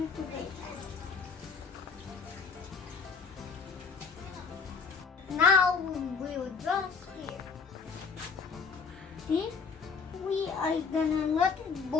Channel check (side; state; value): right; quieter; 5.4 dB